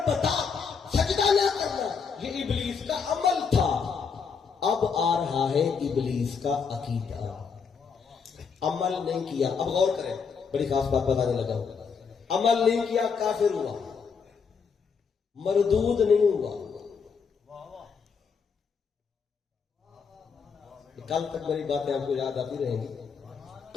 بتا سجدہ نہ کرنا, یہ ابلیس کا عمل تھا. اب آ رہا ہے ابلیس کا عقیدہ. عمل نہیں کیا, اب غور کریں, بڑی خاص بات بتانے لگا. عمل نہیں کیا کافر ہوا, مردود نہیں ہوا. کل تک میری باتیں آپ کو یاد آتی رہیں گی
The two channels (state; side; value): quieter; right; 5.9 dB